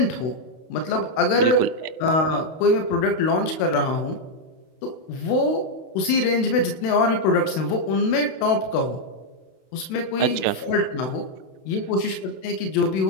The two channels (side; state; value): right; late; 32 ms